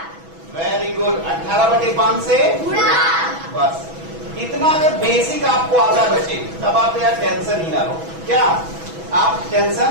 वेरी गुड, 18/5 से बस। इतना अगर बेसिक आपको आता है बच्चे तब आप यार टेंशन ही ना लो। क्या आप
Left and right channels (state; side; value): late; left; 6.1 ms